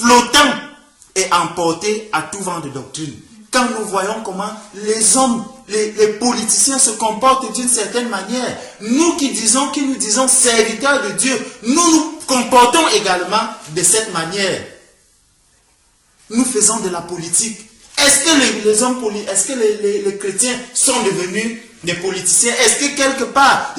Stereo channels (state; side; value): identical; both; correlation 1.00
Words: et emportés à tout vent de doctrine. Quand nous voyons comment les hommes, les politiciens se comportent d'une certaine manière, nous qui nous disons serviteurs de Dieu, nous nous comportons également de cette manière. Nous faisons de la politique. Est-ce que les chrétiens sont devenus des politiciens? Est-ce que quelque part,